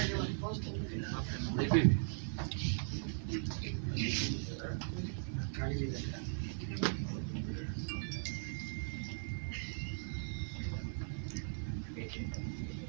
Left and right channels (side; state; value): left; silent; 52 dB below the other